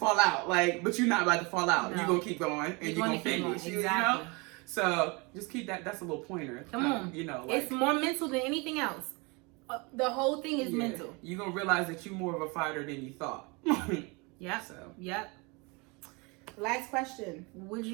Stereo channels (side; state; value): left; quieter; 28.4 dB